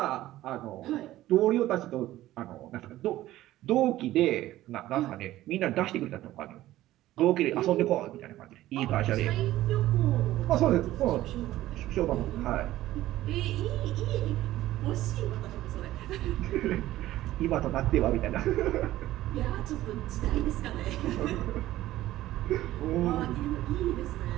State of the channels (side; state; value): left; quieter; 15.1 dB